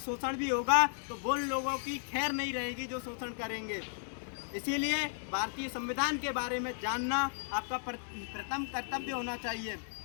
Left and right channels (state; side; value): silent; right; digital silence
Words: शोषण भी होगा तो वो लोगों की खैर नहीं रहेगी जो शोषण करेंगे। इसीलिए भारतीय संविधान के बारे में जानना आपका प्रथम कर्तव्य होना चाहिए,